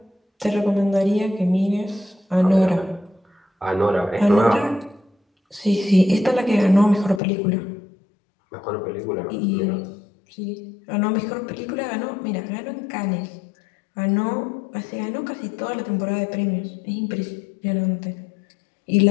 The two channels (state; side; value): drops out; right; at 7.2 s